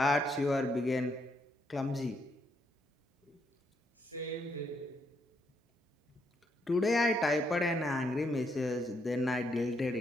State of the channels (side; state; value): both; normal; correlation 0.76